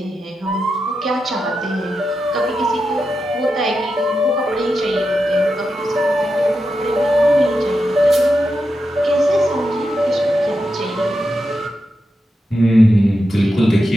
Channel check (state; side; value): normal; both; correlation 0.88